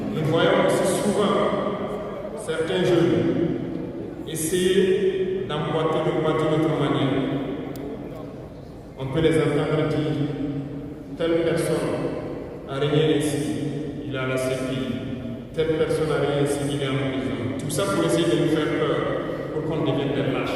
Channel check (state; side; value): identical; both; correlation 1.00